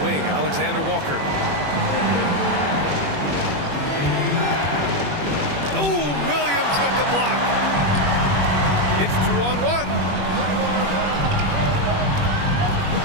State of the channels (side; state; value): left; late; 21 ms